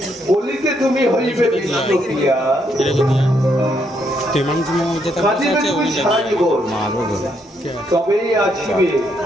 বলিতে তুমি হইবে বিষ্ণুপ্রিয়া, কাঁদিবে তুমি সারা জীবন, তবেই আসিবে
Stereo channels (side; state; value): both; normal; correlation 0.75